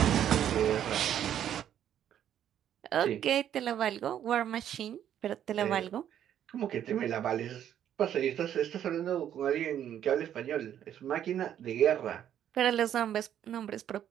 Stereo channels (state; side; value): quieter; left; 10.2 dB